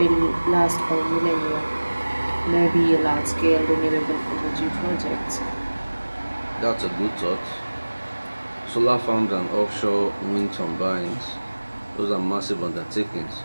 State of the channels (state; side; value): inverted; both; correlation -1.00